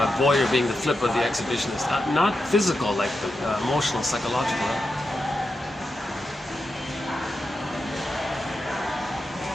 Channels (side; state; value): both; normal; correlation 0.88